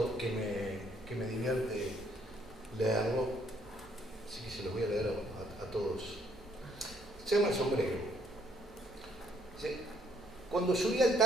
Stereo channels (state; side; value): normal; both; correlation 0.68